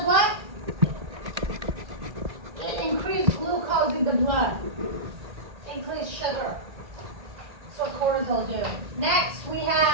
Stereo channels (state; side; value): late; left; 1.8 ms